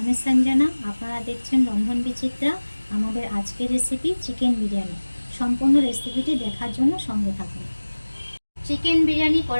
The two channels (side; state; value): both; inverted; correlation -1.00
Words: সঞ্জনা, আপনারা দেখছেন রন্ধন বিচিত্রা। আমাদের আজকের রেসিপি চিকেন বিরিয়ানি। সম্পূর্ণ রেসিপিটি দেখার জন্য সঙ্গে থাকুন। চিকেন বিরিয়ানি